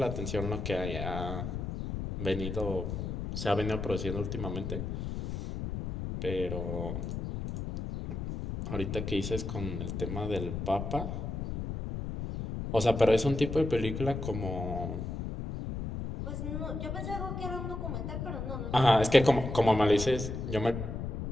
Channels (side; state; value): left; noise; rumble, 5 dB below the sound